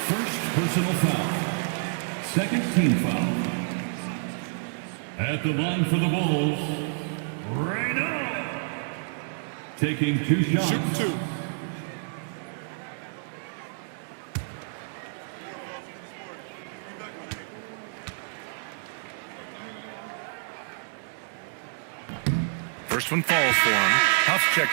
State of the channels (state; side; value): silent; left; digital silence